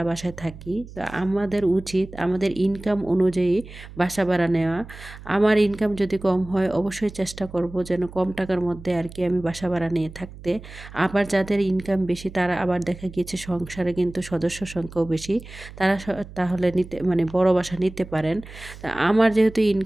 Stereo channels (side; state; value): right; noise; hum, 16 dB below the sound